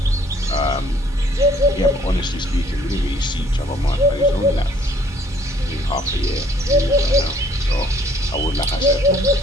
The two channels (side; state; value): both; normal; correlation 0.61